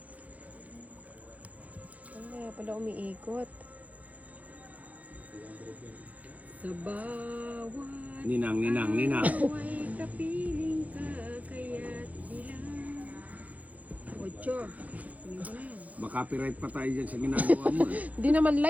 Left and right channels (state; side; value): late; left; 0.073 ms